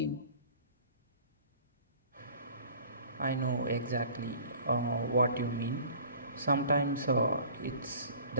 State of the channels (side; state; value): both; inverted; correlation -0.47